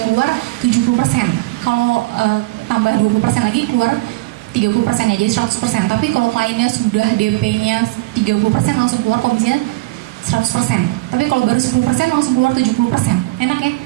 keluar 70%. Kalau tambah 20% lagi keluar 30% ya, jadi 100%. Tapi kalau kliennya sudah DP-nya 30% langsung keluar komisinya 100%. Tapi kalau baru 10% langsung keluar 70%. Enak ya?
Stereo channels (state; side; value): quieter; left; 20.4 dB